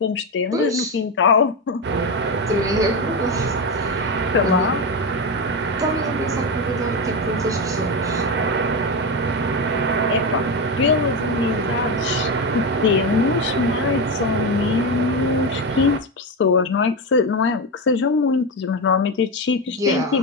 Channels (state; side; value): normal; both; correlation 0.14